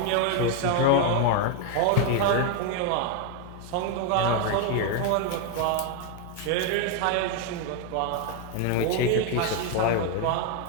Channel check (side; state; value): both; different; correlation 0.01